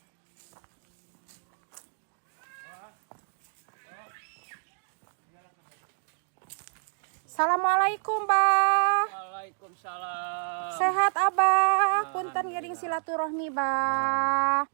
Assalamualaikum, Bah. Waalaikumsalam. Sehat, Abah. Punten gering silaturahmi, Bah.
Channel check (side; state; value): left; silent; digital silence